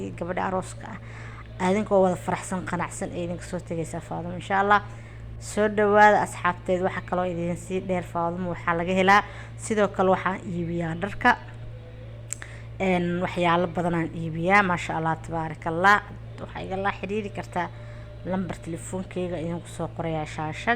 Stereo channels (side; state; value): both; identical; correlation 1.00